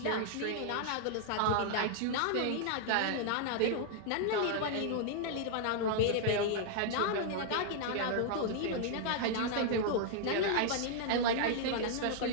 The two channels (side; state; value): both; different; correlation -0.01